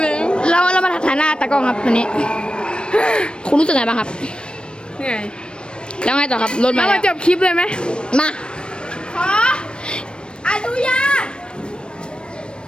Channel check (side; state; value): right; late; 0.055 ms